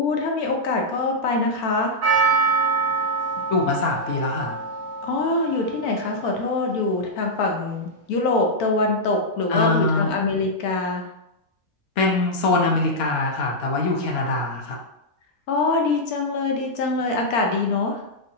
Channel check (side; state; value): both; normal; correlation -0.07